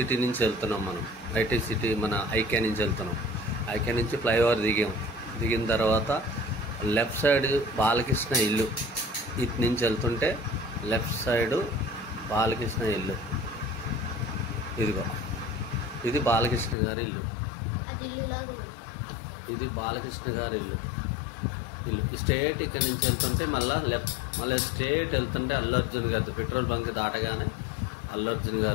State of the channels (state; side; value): drops out; right; at 16.8 s